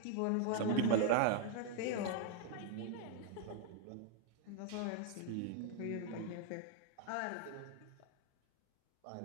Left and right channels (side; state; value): both; different; correlation 0.00